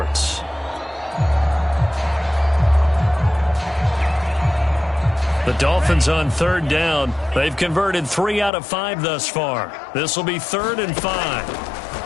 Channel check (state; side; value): drops out; right; at 8.5 s